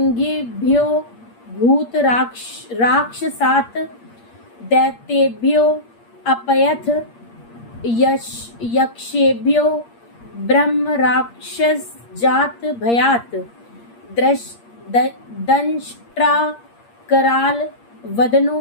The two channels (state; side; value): late; right; 8.5 ms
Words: भूतराक्षसात् दैत्येभ्यो अपयथ यक्षेभ्यो ब्रह्म राक्षस जात भयात दंष्ट्रा कराल वदनो